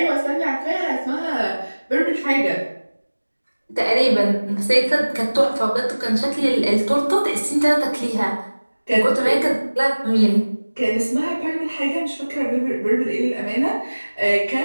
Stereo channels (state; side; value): inverted; both; correlation -1.00